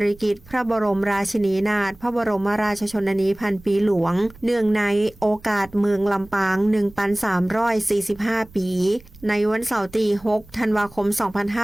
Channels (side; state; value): right; noise; rumble, 24 dB below the sound